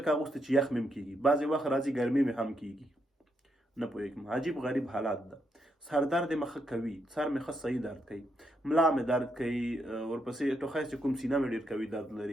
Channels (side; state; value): both; normal; correlation 0.79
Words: اغوستی چې یخ مې هم کېږي، بعضې وخت راځي ګرمي مې هم کېږي. نه پوهېږم، عجیب غریب حالات ده. سر درد مې ښه کوي، سر مې ښه صحیح درد کوي، ملا مې درد کوي، ورپسې ټوخی چې کوم سینه مې ډېر کوي درد